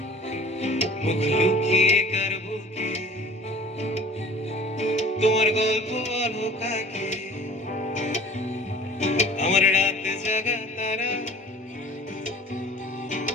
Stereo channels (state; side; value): normal; both; correlation 0.45